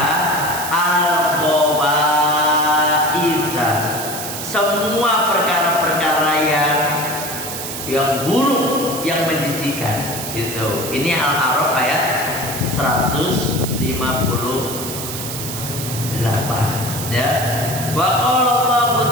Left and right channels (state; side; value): noise; right; hiss, 7 dB below the sound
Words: al-khabaitha, semua perkara-perkara yang buruk, yang menjijikan, gitu. Ini Al-A'raf ayat 158, ya. Wa qala Allah